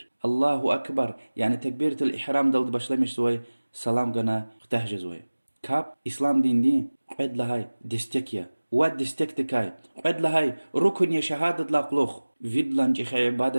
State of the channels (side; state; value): both; inverted; correlation -1.00